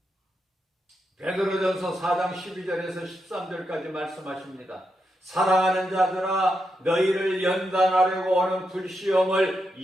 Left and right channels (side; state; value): both; normal; correlation 0.84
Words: 베드로전서 4장 12절에서 13절까지 말씀하십니다. 사랑하는 자들아 너희를 연단하려고 오는 불시험을